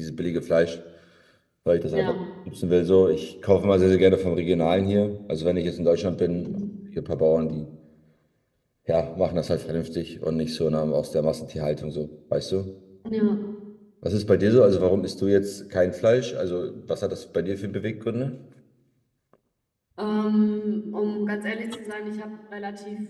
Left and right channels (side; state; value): both; identical; correlation 1.00